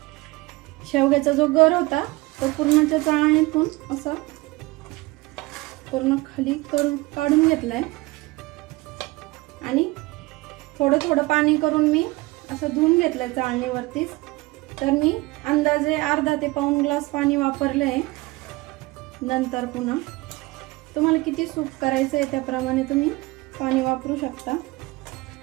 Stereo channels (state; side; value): quieter; left; 21.7 dB